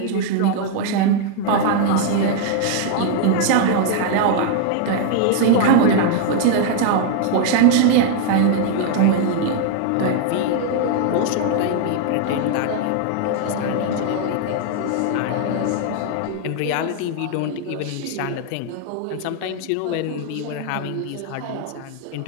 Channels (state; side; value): different; both; correlation 0.00